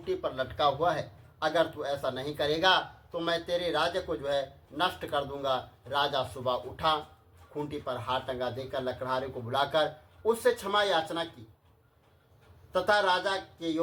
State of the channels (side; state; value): both; identical; correlation 1.00